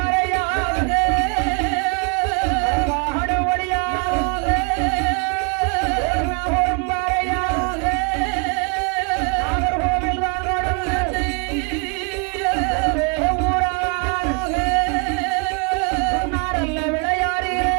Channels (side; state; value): left; quieter; 34.9 dB